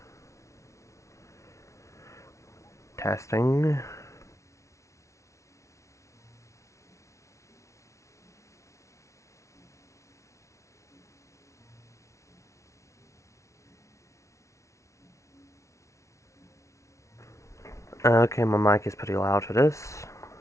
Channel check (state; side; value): late; right; 0.14 ms